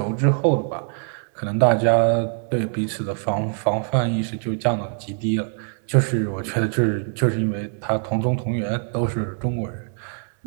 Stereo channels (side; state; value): left; silent; 56 dB below the other